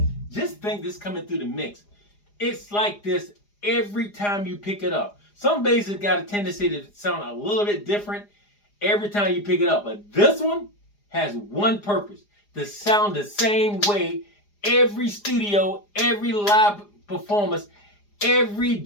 Just think this coming through the mix. It's like this every time you pick it up. Some basses got a tendency to sound a little bit different every time you pick it up, but this one has one purpose: to sound the same way every studio, every live performance, every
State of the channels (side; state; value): right; late; 4.9 ms